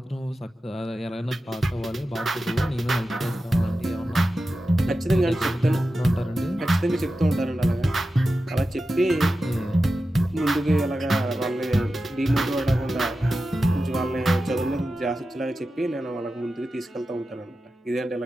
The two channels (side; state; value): both; normal; correlation 0.92